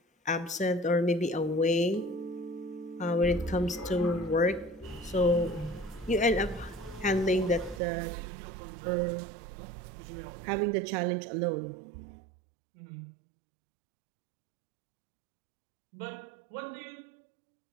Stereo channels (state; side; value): drops out; left; at 7.8 s